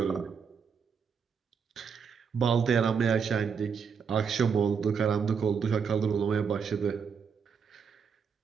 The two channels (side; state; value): left; quieter; 6.3 dB